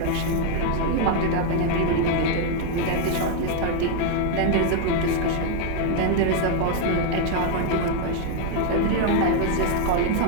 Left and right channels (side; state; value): both; different; correlation 0.00